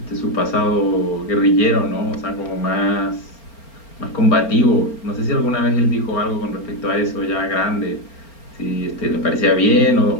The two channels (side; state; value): right; late; 4.4 ms